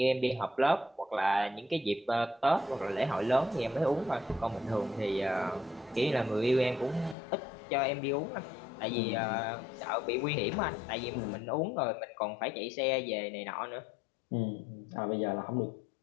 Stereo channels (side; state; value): right; drops out; at 7.2 s